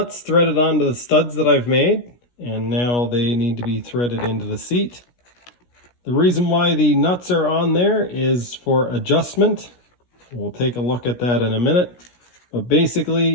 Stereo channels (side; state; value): right; late; 17 ms